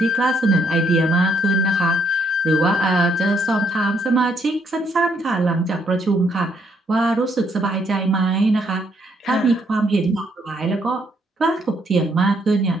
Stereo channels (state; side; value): normal; both; correlation 0.72